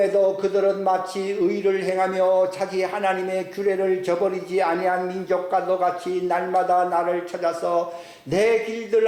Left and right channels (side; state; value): both; identical; correlation 1.00